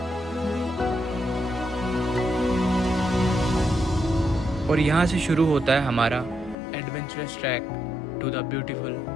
और यहाँ से शुरू होता है हमारा adventurous track to the beautiful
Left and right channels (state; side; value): drops out; right; at 6.6 s